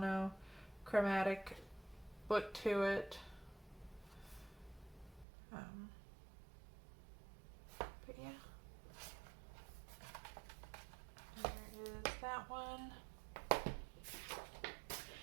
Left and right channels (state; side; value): drops out; left; at 5.2 s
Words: look to it. But yeah. There is that one.